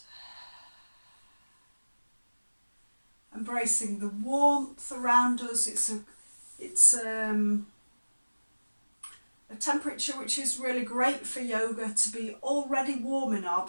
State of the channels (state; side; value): inverted; both; correlation -1.00